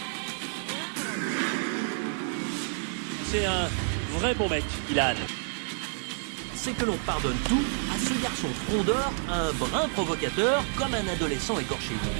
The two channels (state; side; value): silent; left; digital silence